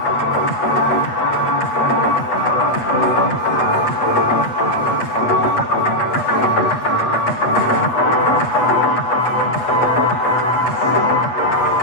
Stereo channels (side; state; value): right; late; 8.5 ms